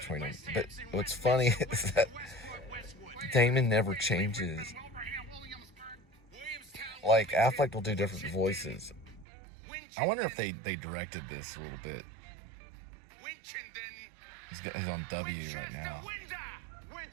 them. But what's funny is that Damon never changes. Like Affleck will do different voices. I wonder if they directed this a little bit. He's on W right now.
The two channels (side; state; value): left; drops out; at 9.2 s